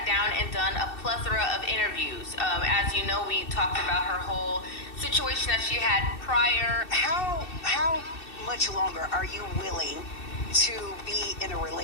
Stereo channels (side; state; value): right; late; 2.6 ms